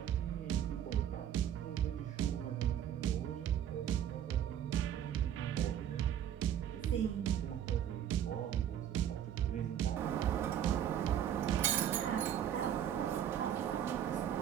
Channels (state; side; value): quieter; left; 10.0 dB